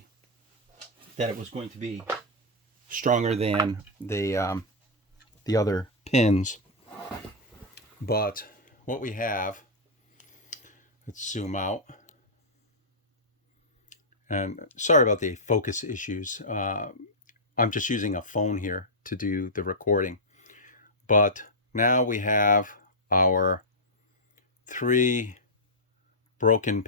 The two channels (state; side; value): normal; both; correlation -0.09